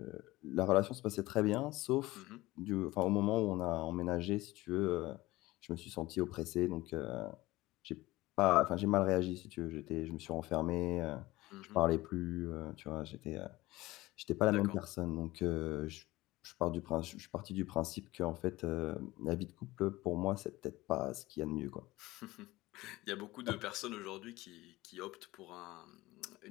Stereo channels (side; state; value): right; quieter; 18.9 dB